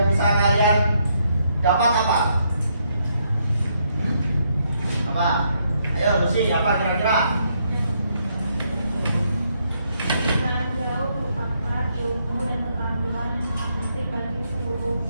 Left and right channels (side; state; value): both; inverted; correlation -0.75